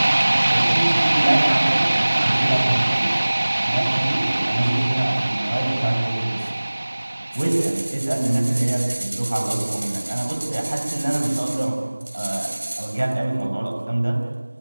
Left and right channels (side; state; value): both; inverted; correlation -1.00